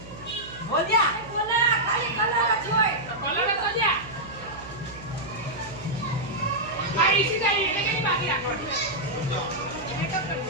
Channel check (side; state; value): right; noise; hum, 16 dB below the sound